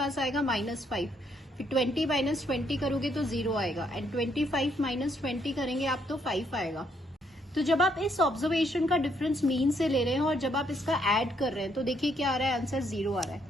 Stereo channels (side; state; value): both; normal; correlation 0.72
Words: आएगा -5. फिर 20 माइनस 20 करोगे तो 0 आएगा, एंड 25 माइनस 20 करेंगे आप तो 5 आएगा. तो जब आप इस ऑब्जर्वेशन का डिफरेंस मीन से ले रहे हैं और जब आप इसका ऐड कर रहे हैं तो देखिए क्या आ रहा है, आंसर 0 आ रहा है.